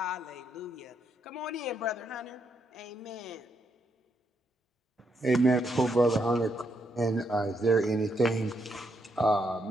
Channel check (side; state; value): both; normal; correlation 0.78